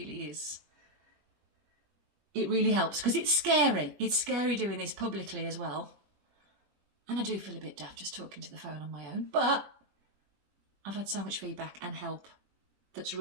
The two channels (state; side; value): late; left; 21 ms